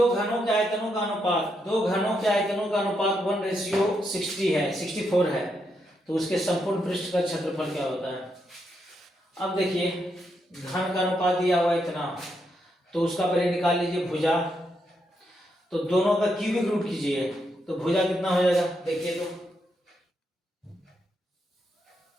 घनों के आयतनों का अनुपात, दो घनों के आयतनों का अनुपात 1:60 है, 64 है, तो उसके संपूर्ण पृष्ठ का क्षेत्रफल क्या होता है? अब देखिए, घन का अनुपात दिया हुआ इतना, तो उसका पहले निकाल लीजिए भुजा। तो दोनों का क्यूबिक रूट कीजिए, तो भुजा कितना हो जाएगा? देखिए, तो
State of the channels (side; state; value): both; normal; correlation 0.80